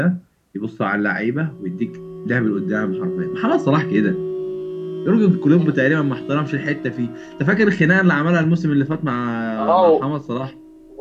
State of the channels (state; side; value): identical; both; correlation 1.00